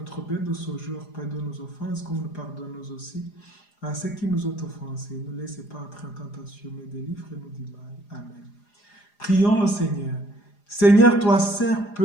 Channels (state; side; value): late; right; 4.9 ms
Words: pain de ce jour, pardonne nos offenses comme nous pardonnons aussi à ceux qui nous ont offensés. Ne laissez pas entrer en tentation, mais délivre-nous du mal. Amen. Prions le Seigneur. Seigneur, toi seul